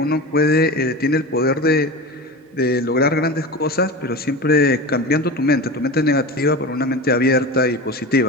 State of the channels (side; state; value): both; normal; correlation 0.28